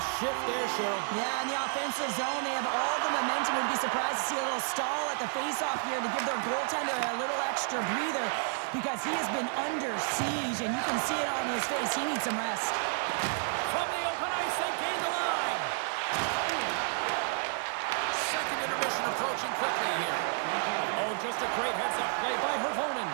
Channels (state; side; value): silent; left; 57 dB below the other